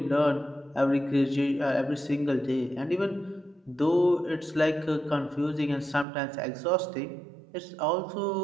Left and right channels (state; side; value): drops out; left; at 6.1 s